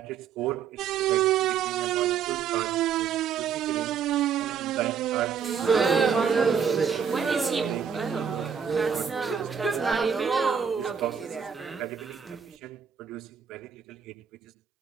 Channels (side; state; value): left; quieter; 7.1 dB